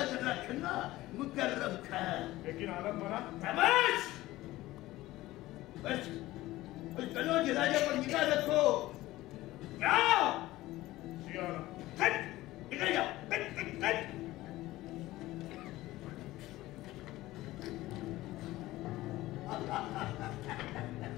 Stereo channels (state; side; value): quieter; right; 17.2 dB